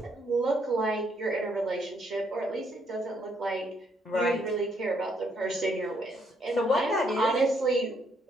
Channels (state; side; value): normal; both; correlation 0.72